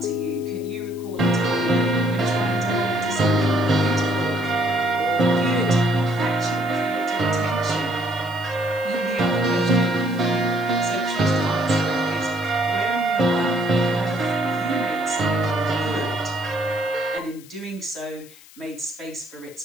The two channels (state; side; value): noise; left; hiss, 22 dB below the sound